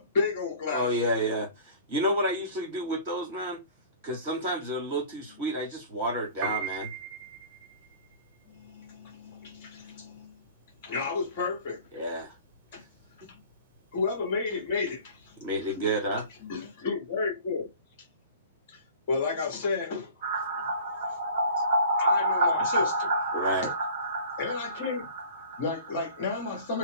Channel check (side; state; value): both; inverted; correlation -0.44